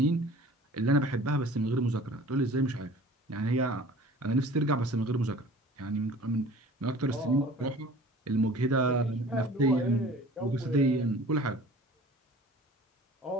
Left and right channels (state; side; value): normal; both; correlation 0.45